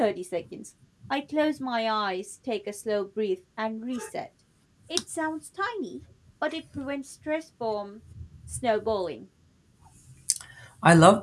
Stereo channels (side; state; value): both; identical; correlation 1.00